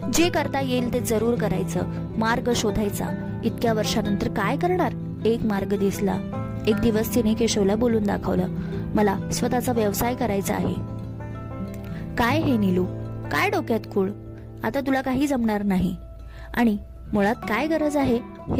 जे करता येईल ते जरूर करायचं. मार्ग शोधायचा. इतक्या वर्षानंतर काय करणार? एक मार्ग दिसला. एक दिवस तिने केशवला बोलून दाखवलं, मला स्वतःचा व्यवसाय करायचा आहे. काय हे नीलू, काय डोक्यात खूळ? आता तुला काही जमणार नाही. आणि मुळात काय गरज आहे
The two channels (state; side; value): identical; both; correlation 1.00